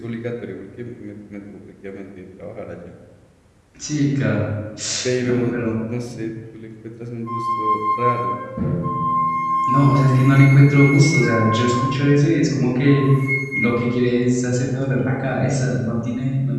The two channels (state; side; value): identical; both; correlation 1.00